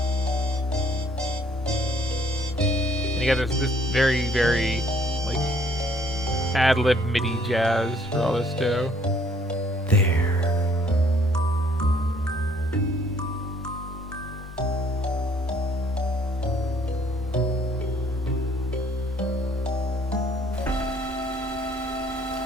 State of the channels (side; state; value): both; normal; correlation 0.62